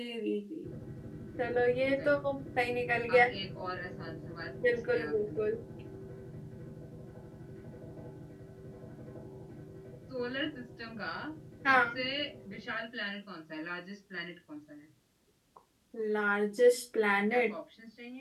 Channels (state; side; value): identical; both; correlation 1.00